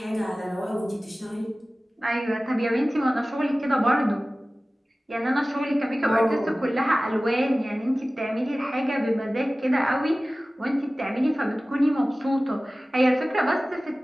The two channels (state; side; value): normal; both; correlation 0.97